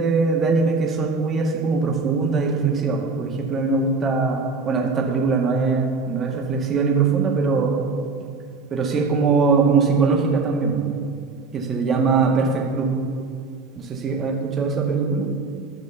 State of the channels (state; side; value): quieter; left; 4.3 dB